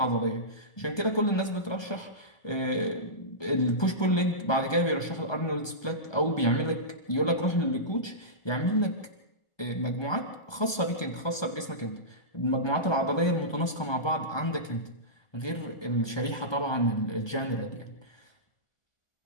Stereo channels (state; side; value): late; right; 1.2 ms